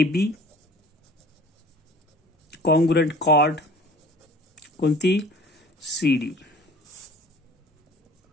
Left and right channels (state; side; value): normal; both; correlation 0.47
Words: कॉन्ग्रुएंट chord कोणती, CD.